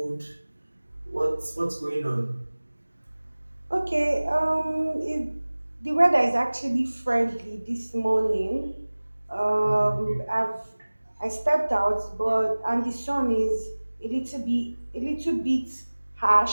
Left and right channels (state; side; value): inverted; both; correlation -1.00